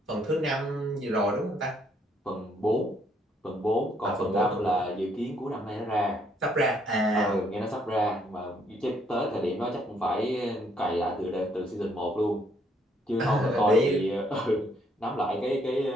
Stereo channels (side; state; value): both; normal; correlation 0.69